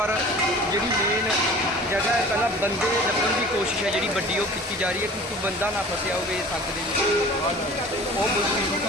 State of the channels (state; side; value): normal; both; correlation 0.43